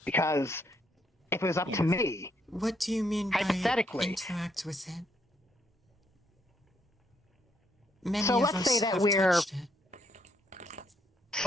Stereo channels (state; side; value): normal; both; correlation 0.73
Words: Because if it was up to me, What do you mean by hypothetically, interact with it? Many so of let's say us that have we're touched it.